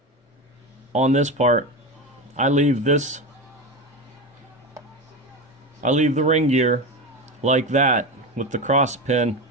this part, I leave the ring gear like that with the cross pin,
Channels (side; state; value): both; normal; correlation 0.21